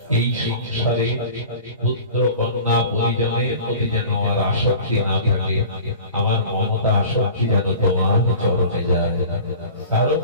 এই সংসারে পুত্র কন্যা পরিজনের প্রতি যেন আমার আসক্তি না থাকে, আমার মমতা আসক্তি যেন তোমার চরণে যায়, কারো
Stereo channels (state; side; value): inverted; both; correlation -0.40